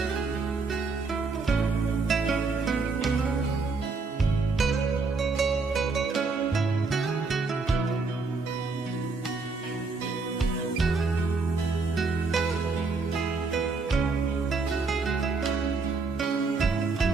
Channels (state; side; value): quieter; left; 4.2 dB